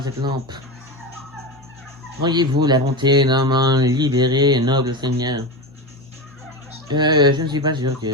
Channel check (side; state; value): both; normal; correlation 0.21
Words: cette lampe. Voyez-vous la bonté d'un m'en libérer, noble seigneur? Je ne suis pas sûr